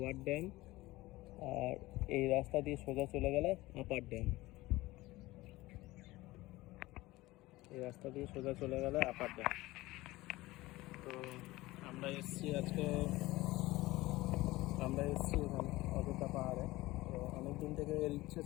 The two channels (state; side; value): quieter; right; 19.0 dB